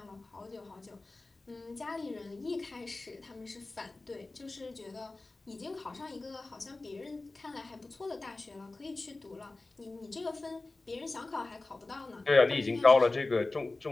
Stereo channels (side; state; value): right; quieter; 3.2 dB